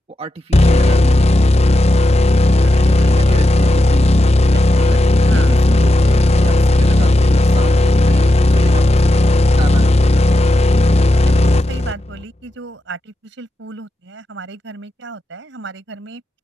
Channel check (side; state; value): both; normal; correlation 0.88